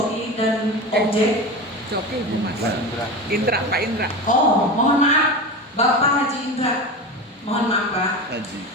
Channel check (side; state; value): both; normal; correlation 0.26